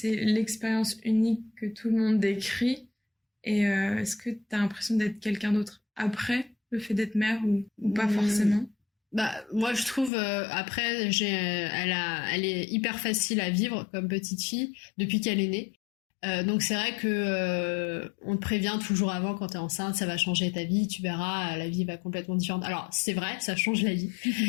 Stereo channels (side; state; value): right; drops out; at 10.1 s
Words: l'expérience unique que tout le monde décrit? Et est-ce que t'as l'impression d'être quelqu'un d'autre après le fait d'être mère ou pas forcément? Bah moi je trouve après elle est hyper facile à vivre comme petite fille depuis qu'elle est née. Donc c'est vrai que on te prévient toujours avant, quand t'es enceinte, ça va changer ta vie, tu verras, la vie va complètement différente. Alors c'est vrai, ça change la vie,